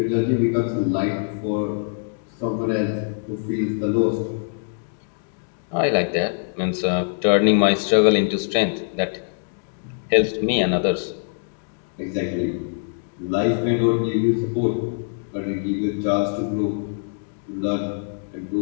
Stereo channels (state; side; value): silent; right; digital silence